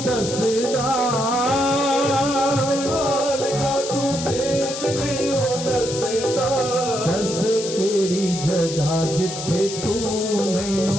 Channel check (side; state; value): left; noise; hiss, 8 dB below the sound